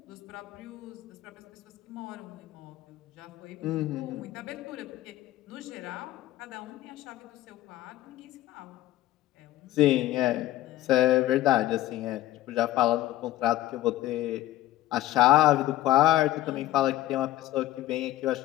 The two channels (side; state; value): right; quieter; 15.2 dB